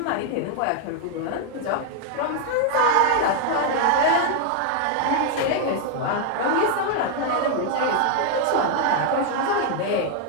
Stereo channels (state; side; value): different; both; correlation 0.00